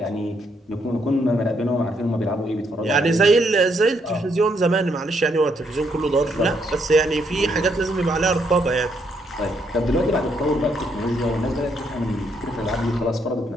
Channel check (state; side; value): normal; both; correlation 0.74